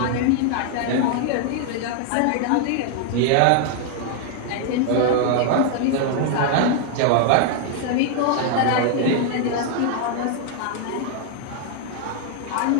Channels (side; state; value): both; different; correlation 0.00